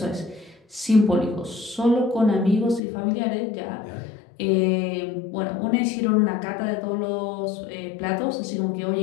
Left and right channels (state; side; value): drops out; right; at 2.8 s